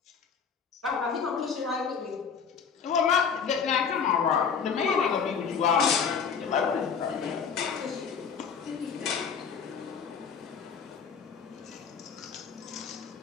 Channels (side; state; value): right; quieter; 6.5 dB